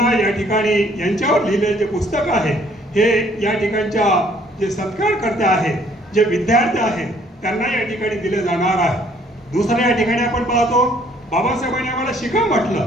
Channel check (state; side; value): normal; both; correlation 0.62